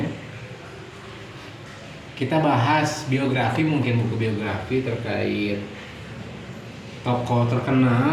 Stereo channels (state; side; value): identical; both; correlation 1.00